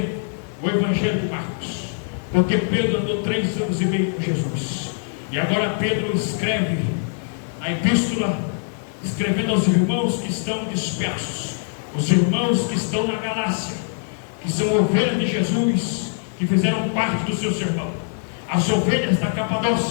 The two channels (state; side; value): silent; right; digital silence